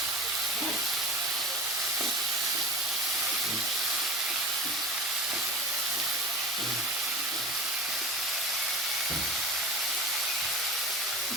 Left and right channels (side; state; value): both; normal; correlation 0.34